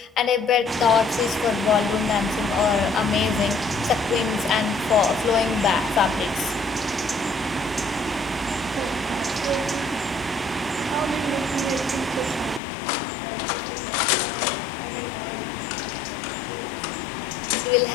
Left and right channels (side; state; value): right; drops out; at 12.6 s